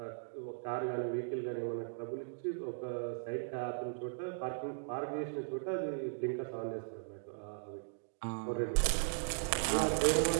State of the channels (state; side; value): silent; left; digital silence